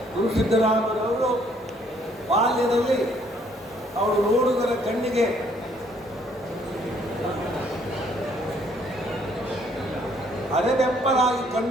ಗುರು ಸಿದ್ದರಾಮರವರು ಬಾಲ್ಯದಲ್ಲಿ ಅವರು ನೋಡುಗರ ಕಣ್ಣಿಗೆ ಅರೆಬೆಪ್ಪಲಾಗಿ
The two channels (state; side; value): normal; both; correlation 0.64